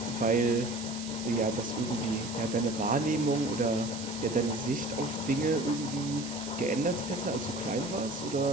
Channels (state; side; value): noise; right; hiss, 10 dB below the sound